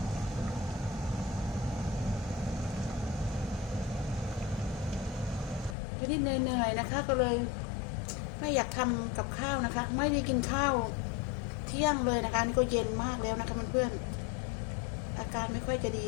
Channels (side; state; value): right; drops out; at 5.8 s